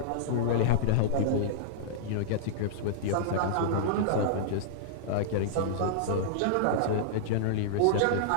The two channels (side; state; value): both; different; correlation -0.02